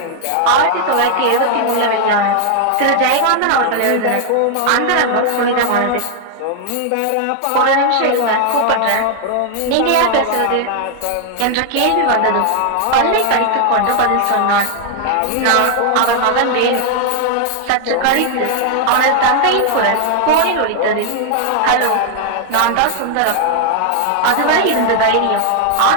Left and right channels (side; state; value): both; different; correlation 0.00